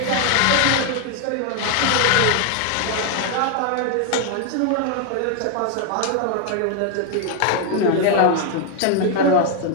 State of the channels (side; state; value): both; different; correlation 0.00